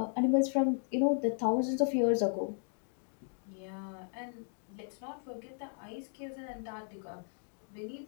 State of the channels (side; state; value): right; silent; 54 dB below the other